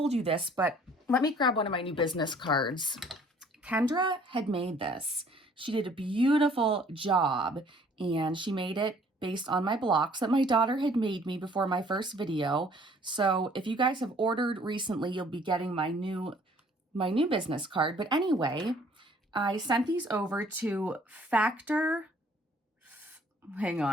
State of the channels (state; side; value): normal; both; correlation 0.57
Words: you this, but let me grab one of my new business cards. Kendra had made this. She did a beautiful job, and she made it based on my blocks that my daughter had made me before my first video. So if you guys have ordered recently, you'll be getting my new business card. But anyway, I sent these over to hang